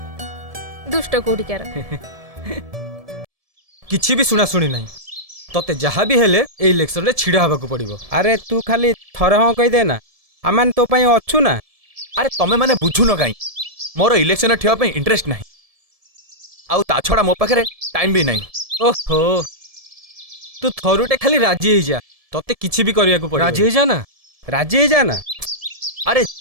दुष्ट कोडिकार किछि भी सुना सुनी नहीं तते जहा भी हेले ए इलेक्शन रे छिड़ा हबा को पड़िबो। अरे तू खाली थरे हाँ कहि दे ना आमान तो पई अछु ना। अरे तमे माने बुझु न काई मोर इलेक्शन ठेवा पे इंटरेस्ट नाही आउ ता छडा मो पाखरे टाइम भी नाही। ओहो तू थरुटे खाली राजी हे जा तते किछि भी करिया को पड़िबो। राजी हे जा ना राजी हे जा ना। अरे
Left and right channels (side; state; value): left; late; 1.7 ms